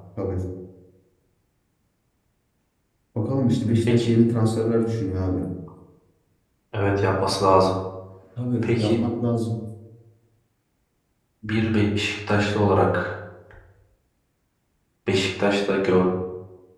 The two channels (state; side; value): identical; both; correlation 1.00